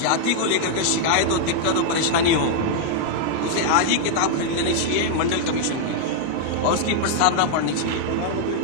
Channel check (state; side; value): different; both; correlation -0.01